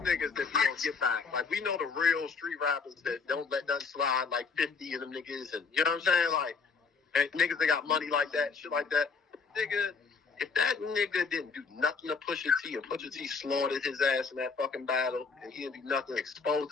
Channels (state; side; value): quieter; right; 5.0 dB